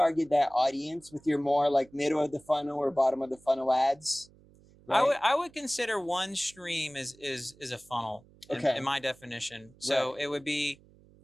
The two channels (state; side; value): noise; right; hum, 27 dB below the sound